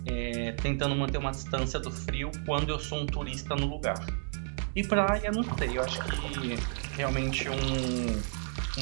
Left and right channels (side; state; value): left; silent; digital silence